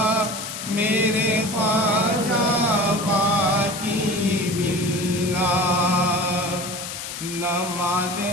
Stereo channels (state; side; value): noise; left; hiss, 8 dB below the sound